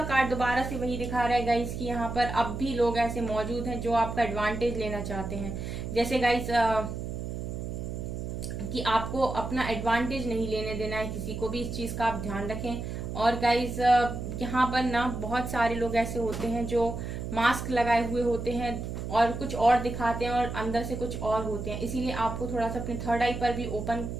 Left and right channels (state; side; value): noise; right; hum, 5 dB below the sound